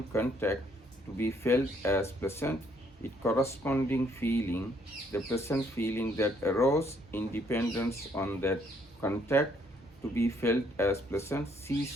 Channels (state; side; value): normal; both; correlation 0.68